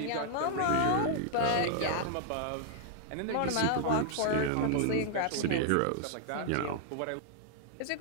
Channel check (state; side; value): different; both; correlation -0.01